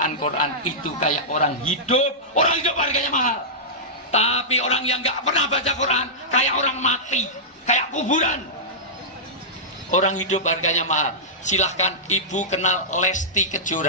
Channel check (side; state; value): both; normal; correlation -0.14